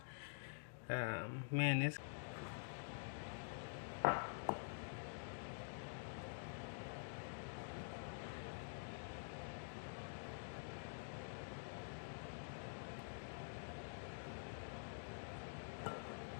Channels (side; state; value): right; silent; digital silence